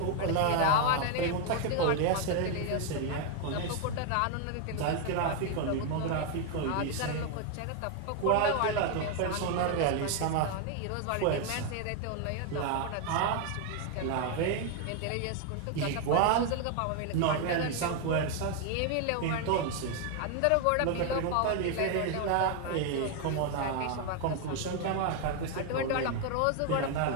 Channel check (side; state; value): both; different; correlation 0.01